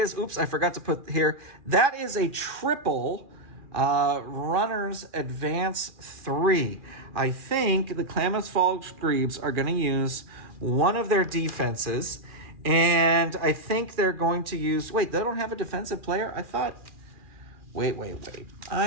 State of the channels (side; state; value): left; late; 2.4 ms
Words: I forgot to put here, that is a triple. Runners advance 3. I think the Klamath Falls Grebes are going to use one of their defenses, and I think they're going to use... Wait, they don't have a defensive player? I thought... Wait.